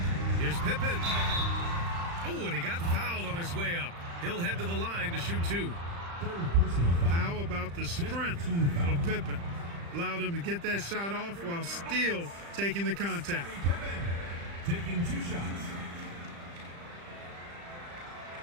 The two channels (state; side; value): late; left; 35 ms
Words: Here's Pippen. Oh, and he got fouled on his way up. He'll head to the line to shoot two. Third personal foul. How about the strength of Pippen? Allowed him to get that shot off while still taking the contact. Pippen taking 2 shots.